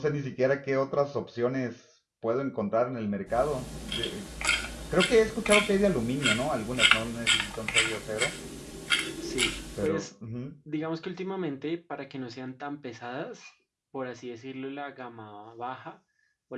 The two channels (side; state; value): both; identical; correlation 1.00